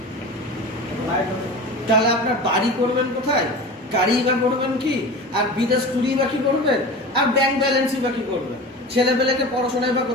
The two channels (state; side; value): normal; both; correlation 0.33